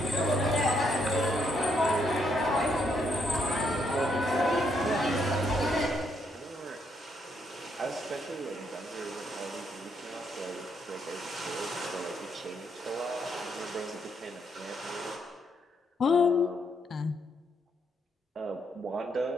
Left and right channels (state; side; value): normal; both; correlation 0.75